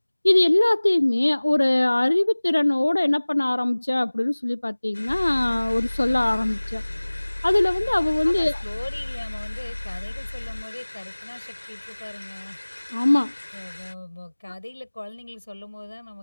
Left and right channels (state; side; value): inverted; both; correlation -1.00